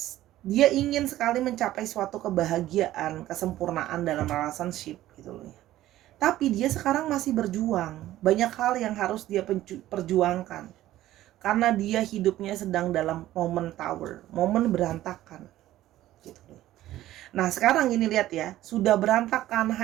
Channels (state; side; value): quieter; left; 14.4 dB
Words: Dia ingin sekali mencapai suatu kebahagiaan, kesempurnaan dalam relationship gitu loh ya. Tapi dia sekarang masih berjuang. Banyak hal yang harus dia perjuangkan. Karena dia hidupnya sedang dalam momen tower, momen berantakan. Gitu loh. Nah sekarang ini lihat ya, sudah berantakan,